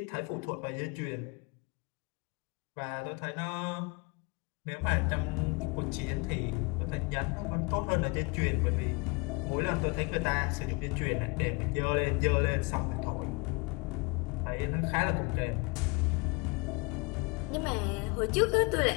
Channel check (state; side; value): quieter; right; 27.8 dB